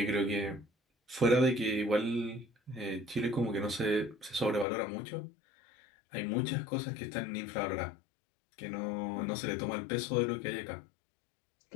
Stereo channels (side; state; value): right; drops out; at 4.7 s